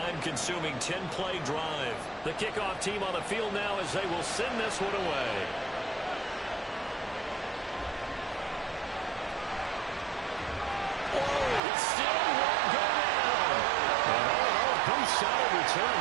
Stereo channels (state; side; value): drops out; left; at 11.6 s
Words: 10-play drive. The kickoff team on the field now as they will send this one away. It still won't go down. And pretty solid return.